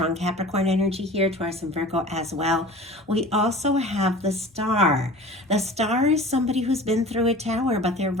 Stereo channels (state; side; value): normal; both; correlation 0.40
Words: Capricorn energy here, Taurus and Virgo as well. We also have the Star. The Star is somebody who's been through a tower, but they're